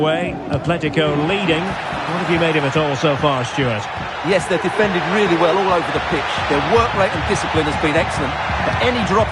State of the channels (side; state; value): both; identical; correlation 1.00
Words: Atletico leading. What have you made of it all so far, Stuart? Yes, they've defended really well all over the pitch. Their work rate and discipline has been excellent. But any drop